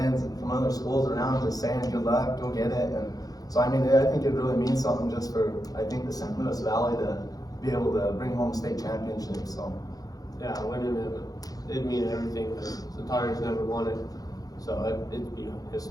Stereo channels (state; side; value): late; right; 0.18 ms